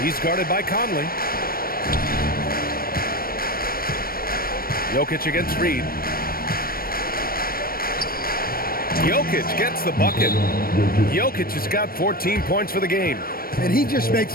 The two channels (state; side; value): late; right; 0.43 ms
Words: He's guarded by Conley. Jokic against Reed. Jokic gets the bucket. Jokic has got 14 points for the game. And he just makes